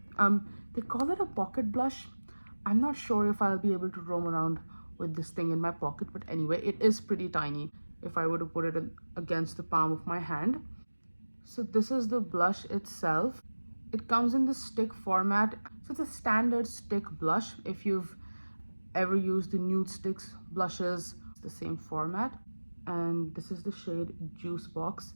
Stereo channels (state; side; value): inverted; both; correlation -1.00